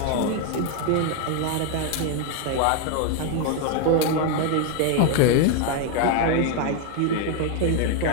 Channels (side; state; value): both; different; correlation 0.01